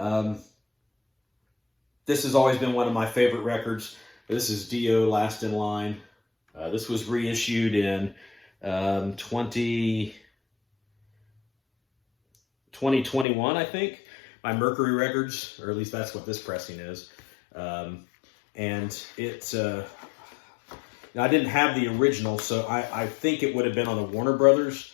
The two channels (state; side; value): drops out; right; at 13.2 s